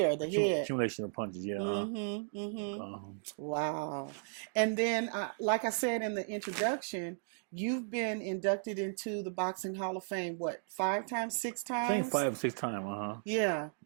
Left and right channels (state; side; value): silent; left; digital silence